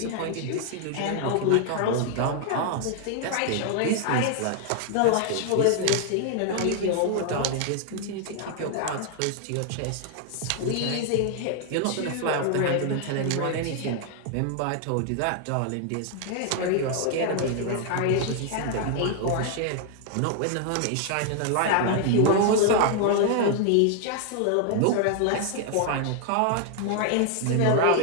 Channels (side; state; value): both; different; correlation 0.00